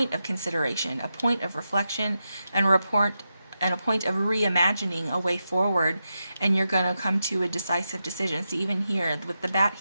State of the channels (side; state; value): both; inverted; correlation -0.88